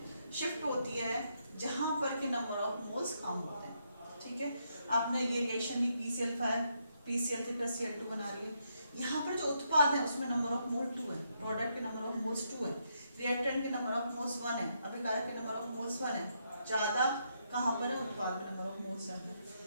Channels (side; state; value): both; inverted; correlation -0.78